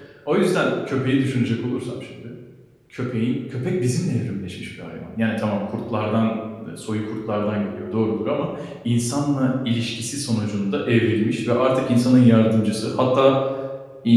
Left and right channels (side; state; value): both; identical; correlation 1.00